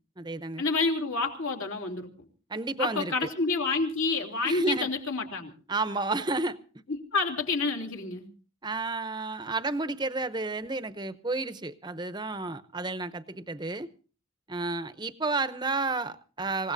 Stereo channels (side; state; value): both; normal; correlation 0.21